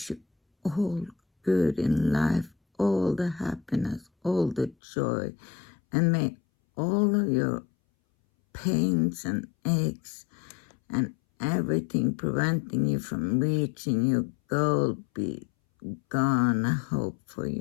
you all good in life, all the happiness, all the joy, and may all of your pains and aches and everything preventing you from reaching your goal be gone, I hope, for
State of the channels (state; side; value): drops out; right; at 4.8 s